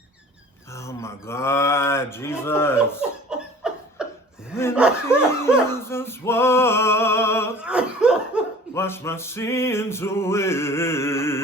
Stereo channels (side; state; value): both; normal; correlation 0.46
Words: Oh my God, Jesus. When Jesus walked, wash my sins away.